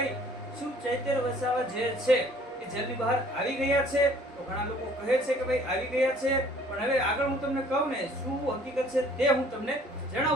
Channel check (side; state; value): both; normal; correlation 0.55